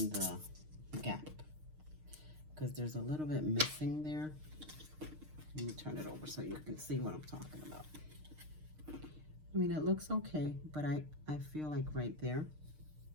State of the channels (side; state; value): left; late; 6.5 ms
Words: the gap, because there's a little bit missing there. Let me turn it over so you can see what I'm talking about. I mean, it looks okay, but I feel like right